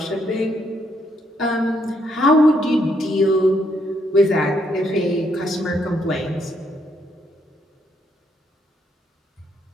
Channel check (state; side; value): normal; both; correlation 0.74